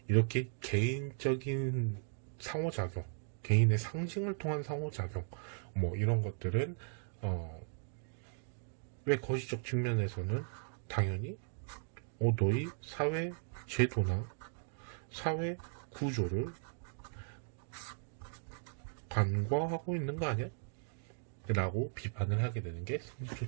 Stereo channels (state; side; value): silent; left; 53 dB below the other